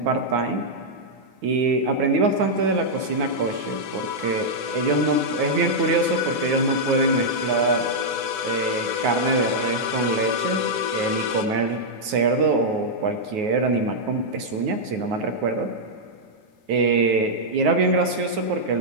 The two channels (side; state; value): left; late; 9.3 ms